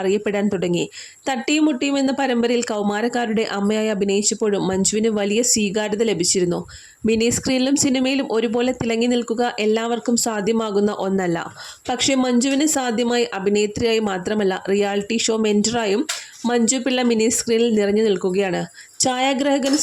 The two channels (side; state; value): both; identical; correlation 1.00